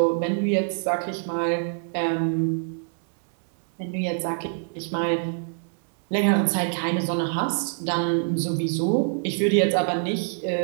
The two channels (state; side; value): silent; left; 62 dB below the other